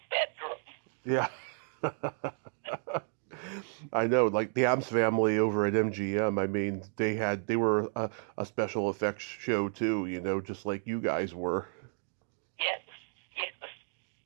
bedroom. Yeah. I know, like the Addams Family over at MGM, they were a special effects show too, just like you guys were. Yes,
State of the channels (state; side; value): silent; left; 56 dB below the other